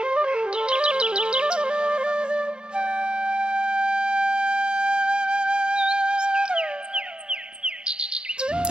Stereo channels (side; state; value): left; late; 0.050 ms